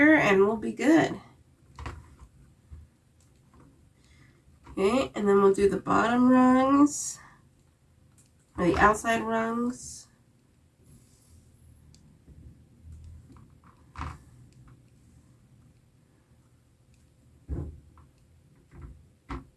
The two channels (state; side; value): identical; both; correlation 1.00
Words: and we'll be good. Okay, and then we'll do the bottom rungs, or the outside rungs.